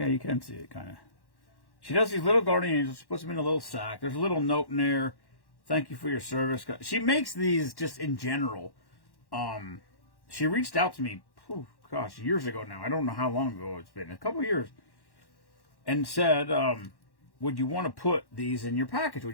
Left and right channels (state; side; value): late; right; 1.1 ms